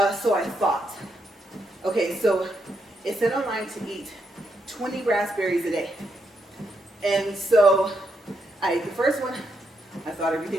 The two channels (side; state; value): both; normal; correlation 0.80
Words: I thought. Okay, so it said online to eat 20 raspberries a day. And so I ate the first one. I thought